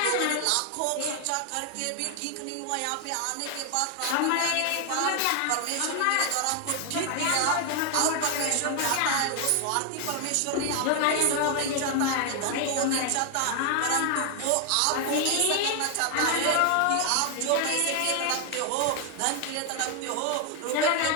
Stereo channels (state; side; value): different; both; correlation 0.00